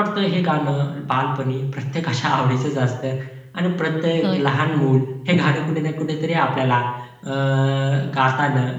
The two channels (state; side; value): identical; both; correlation 1.00